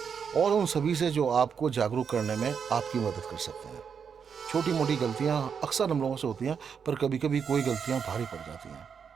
और उन सभी से जो आपको जागरूक करने में आपकी मदद कर सकते हैं। छोटी मोटी गलतियां अक्सर हम लोगों से होती हैं, पर कभी कभी कोई गलतियां भारी पड़ जाती हैं।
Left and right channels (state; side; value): quieter; left; 6.7 dB